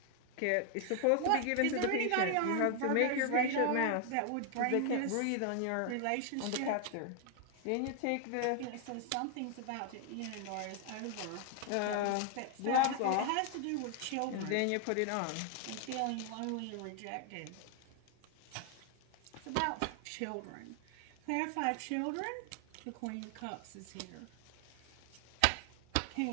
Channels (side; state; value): both; different; correlation 0.00